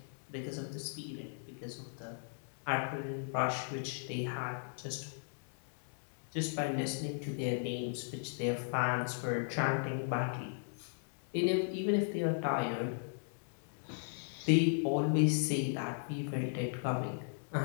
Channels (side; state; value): right; silent; digital silence